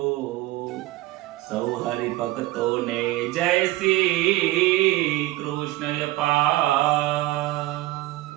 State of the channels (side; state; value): left; quieter; 17.7 dB